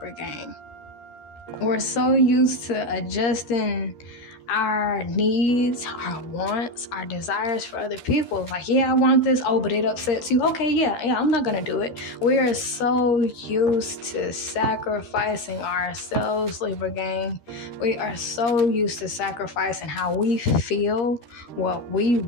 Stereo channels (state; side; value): late; right; 13 ms